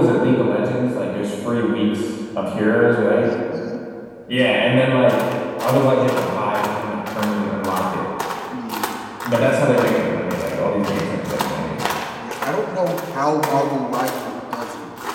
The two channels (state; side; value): identical; both; correlation 1.00